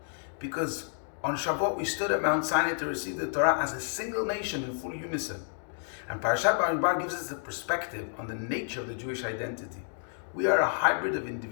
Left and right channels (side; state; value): right; silent; digital silence